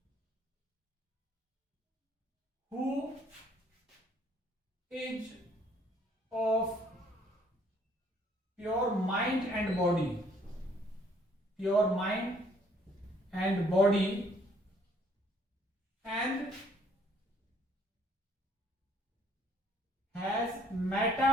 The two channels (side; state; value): both; normal; correlation 0.62